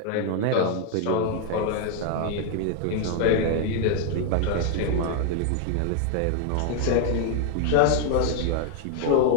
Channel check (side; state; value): both; different; correlation 0.00